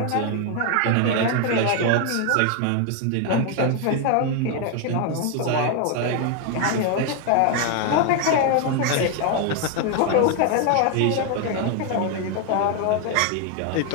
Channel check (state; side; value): different; both; correlation 0.01